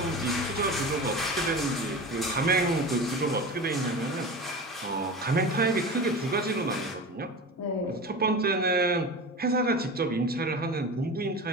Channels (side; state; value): both; normal; correlation 0.30